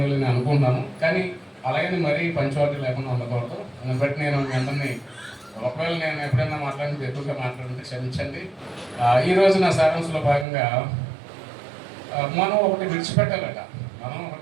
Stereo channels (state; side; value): drops out; left; at 10.5 s